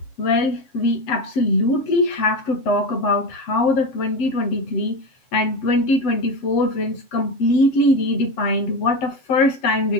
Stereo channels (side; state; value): right; late; 7.3 ms